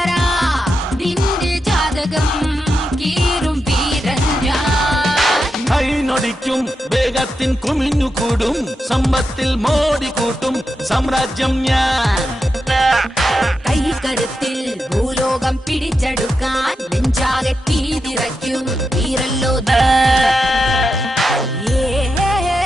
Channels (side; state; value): both; normal; correlation 0.87